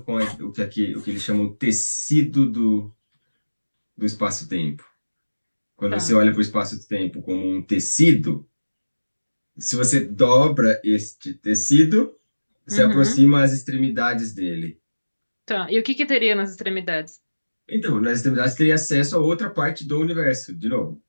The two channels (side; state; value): both; inverted; correlation -1.00